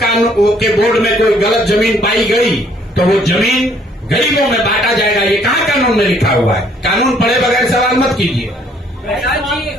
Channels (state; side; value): normal; both; correlation 0.63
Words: कानून के बोर्ड में कोई गलत जमीन पाई गई तो वो जमीन गरीबों में बांटा जाएगा। ये कहाँ कानून में लिखा हुआ है? कानून पढ़े बगैर सवाल मत कीजिए।